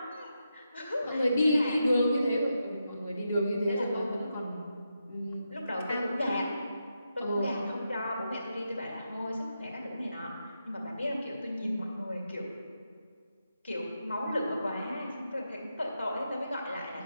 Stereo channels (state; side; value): inverted; both; correlation -0.86